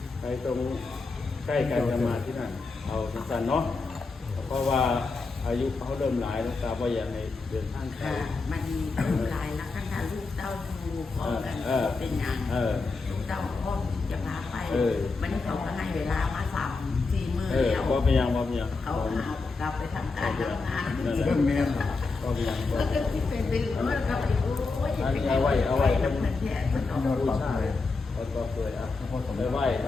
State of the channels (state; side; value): quieter; right; 4.0 dB